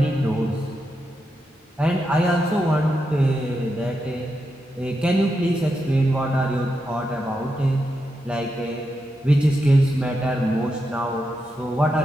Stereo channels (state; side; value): normal; both; correlation 0.86